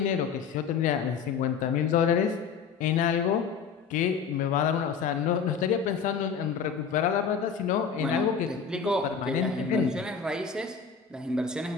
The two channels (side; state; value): right; quieter; 6.3 dB